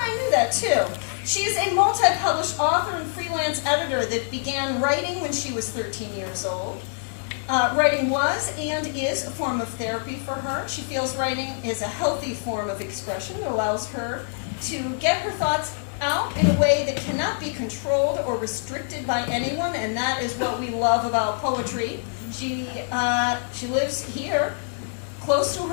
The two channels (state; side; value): silent; right; digital silence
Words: knew that too. She is a multi-published author and freelance editor that began writing when she was 13 years old. Writing was and is a form of therapy for her. She feels writing is a healthy form of expression that allows her to get her thoughts out in a way that cannot be controlled or restricted by anyone, and that is what we love about poetry. She lives here, close to